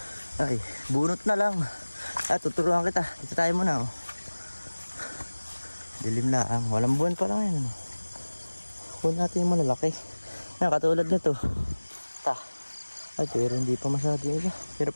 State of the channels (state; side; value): inverted; both; correlation -1.00